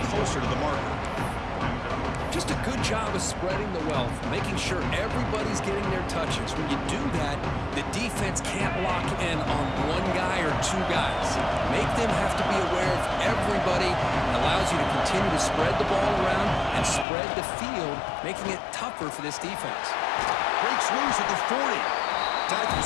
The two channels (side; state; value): right; drops out; at 17.1 s